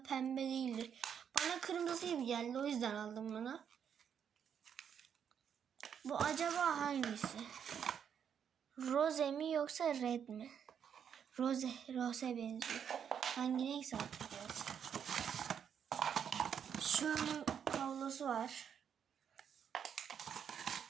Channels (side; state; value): left; quieter; 8.0 dB